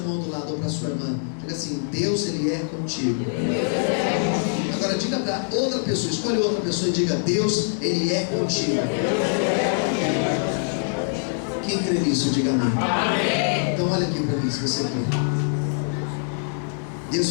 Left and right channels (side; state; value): right; silent; digital silence